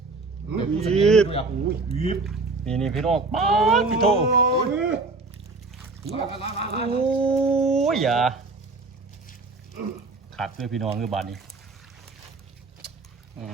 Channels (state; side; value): quieter; left; 3.6 dB